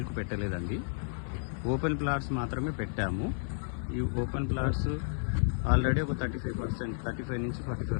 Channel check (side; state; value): right; silent; 56 dB below the other